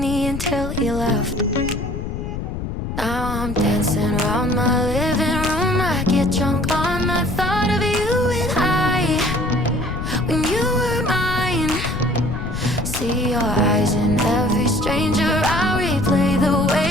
need until you left. Now I'm dancing around my living room. I get drunk on the thought of you and I, when you were mine. See your eyes in every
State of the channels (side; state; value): left; noise; rumble, 5 dB below the sound